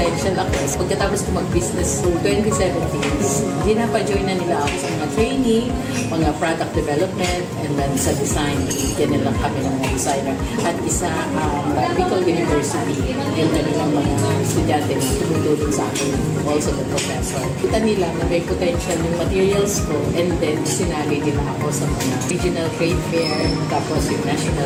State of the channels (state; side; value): identical; both; correlation 1.00